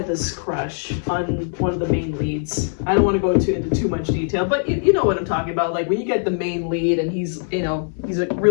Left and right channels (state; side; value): silent; right; digital silence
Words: this crush on one of the main leads. I don't want to go into too much detail, but you know what I'm talking about. Like, when you get the main lead and he's, you know, he's, like,